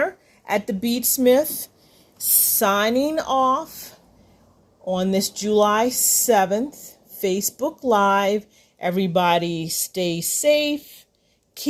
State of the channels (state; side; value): identical; both; correlation 1.00